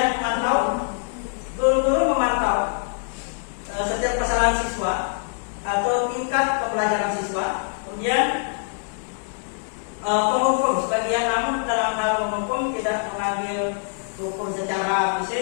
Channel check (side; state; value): right; silent; digital silence